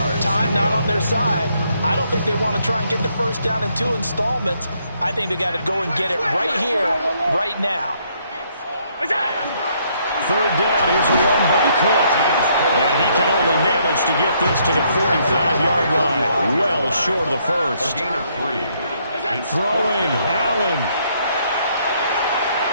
Time not on their side. I don't think they want to try and get the 1st down in 2 installments. I think they got to go and get it right here, right now. 3rd down, here's a run by Cook. And he can only manage to get this to the 45-yard line. Well short of the 1st. A gain of 3. Throwing, Allen.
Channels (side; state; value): both; inverted; correlation -0.70